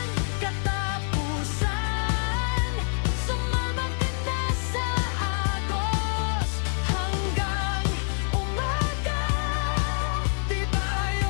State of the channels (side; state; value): right; silent; digital silence